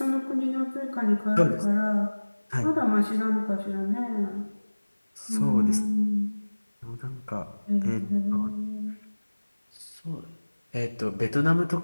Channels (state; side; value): inverted; both; correlation -1.00